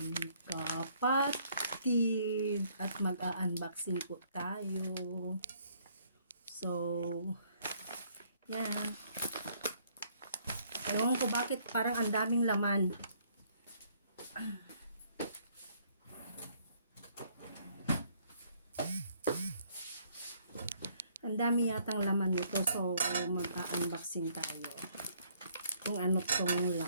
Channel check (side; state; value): both; inverted; correlation -0.65